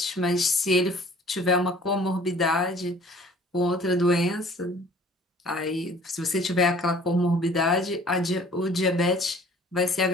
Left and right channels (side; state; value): both; normal; correlation 0.52